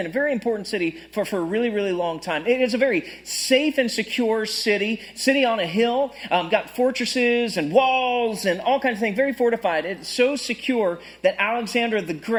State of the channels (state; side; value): identical; both; correlation 1.00